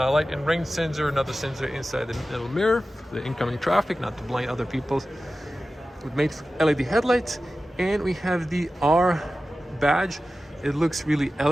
and rain sensor, another sensor inside the middle mirror, the incoming traffic, not to blind other people, with made LED headlights. And we have the R badge. It looks really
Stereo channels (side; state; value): both; normal; correlation 0.94